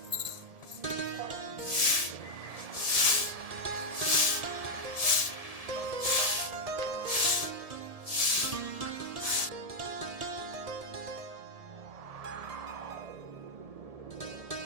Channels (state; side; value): late; left; 1.7 ms